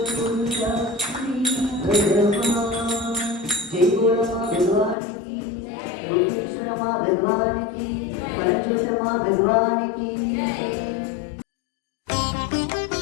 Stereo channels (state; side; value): drops out; right; at 5.0 s